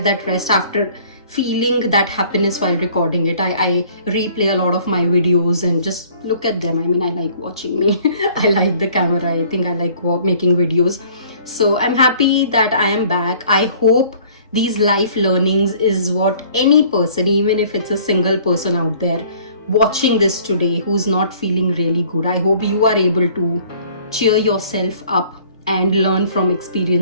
that rest, after feeling that happiness while recording it. I replay a lot of my videos and just look at them. I mean, I like watching me. I like the camera. I think I like making videos. So I'm happy that I am back. I hope these life learnings is what any person, even if it's a single person out there watching this today who's not feeling really good, I hope you are able to cheer yourself up and learn from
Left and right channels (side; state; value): both; inverted; correlation -0.54